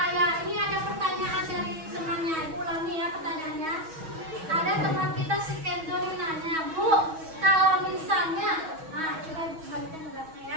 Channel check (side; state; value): left; late; 6.2 ms